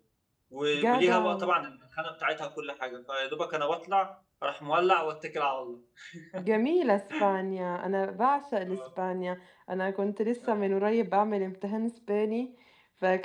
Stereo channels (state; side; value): identical; both; correlation 1.00